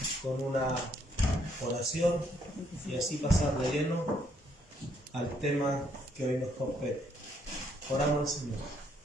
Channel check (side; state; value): both; normal; correlation 0.70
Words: con una oración y así pasar de lleno al tema que hoy nos compete. Oramos al Señor.